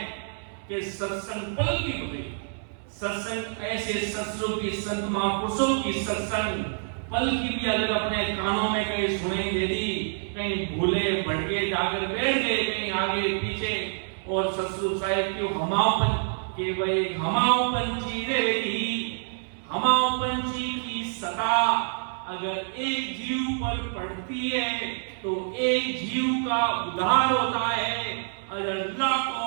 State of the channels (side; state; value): left; silent; 60 dB below the other